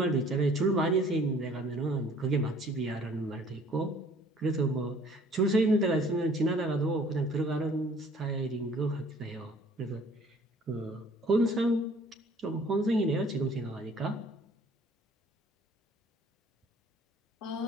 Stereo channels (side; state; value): both; normal; correlation 0.55